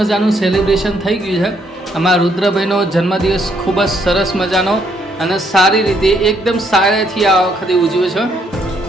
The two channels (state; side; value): normal; both; correlation 0.71